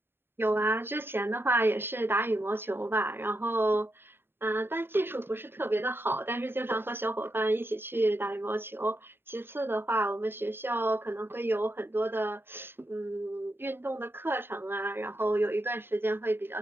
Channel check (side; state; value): left; late; 0.11 ms